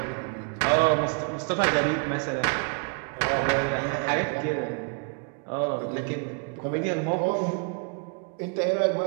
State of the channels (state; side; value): quieter; left; 38.6 dB